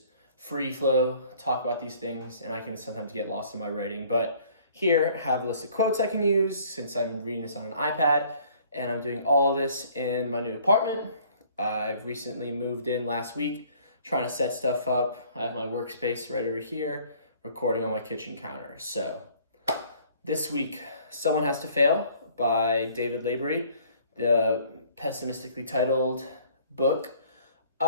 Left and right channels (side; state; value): both; inverted; correlation -0.56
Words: free flow, talk about these things, and I can sometimes get lost in my writing. But here, I have a list of quotes I can use since I'm reading this on an iPad, and I'm doing all of this in my new apartment. I've recently moved in last week, trying to set stuff up. I have my workspace right over here, recording on my kitchen counter. So this week, Someone Has to Fail by David Lavery, the pessimistically titled book.